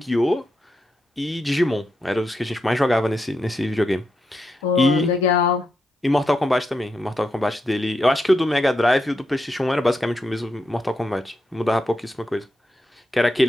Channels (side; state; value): both; normal; correlation 0.84